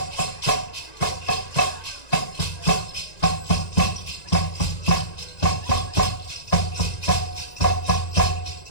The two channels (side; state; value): right; late; 1.9 ms